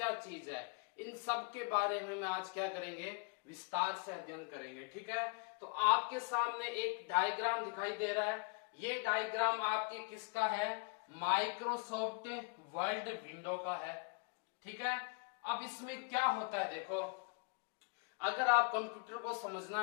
चीज है, इन सब के बारे में मैं आज क्या करेंगे, विस्तार से अध्ययन करेंगे, ठीक है। तो आपके सामने एक डायग्राम दिखाई दे रहा है, ये डायग्राम आपके किसका है, माइक्रोसॉफ्ट वर्ल्ड विंडो का है, ठीक है। अब इसमें क्या होता है, देखो अगर आप कंप्यूटर को समझना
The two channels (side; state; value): right; quieter; 33.4 dB